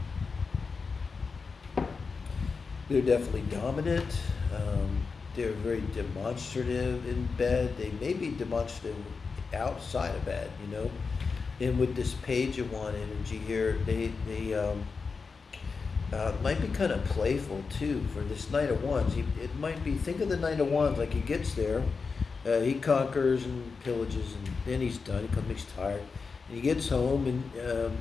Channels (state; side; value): quieter; right; 4.8 dB